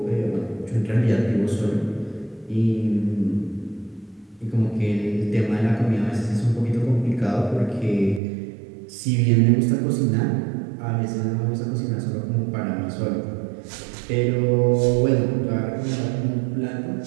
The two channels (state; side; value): drops out; left; at 8.2 s